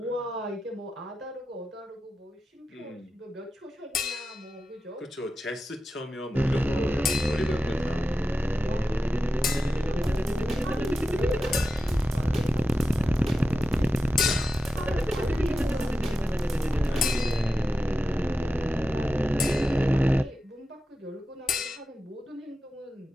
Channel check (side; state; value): both; normal; correlation 0.91